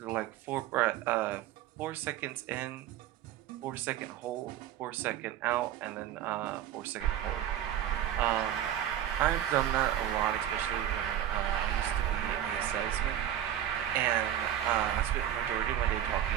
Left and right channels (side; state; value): left; quieter; 11.3 dB